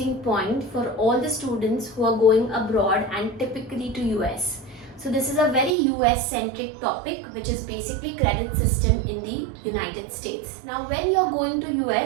point for all the students who are going abroad and typically to US. So this is a very US centric topic, which is basically credit system in the United States. Now when you're going to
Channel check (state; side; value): drops out; left; at 5.8 s